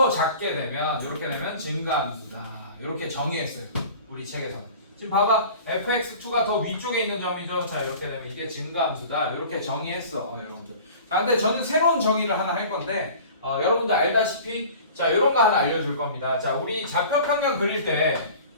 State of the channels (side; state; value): both; inverted; correlation -0.42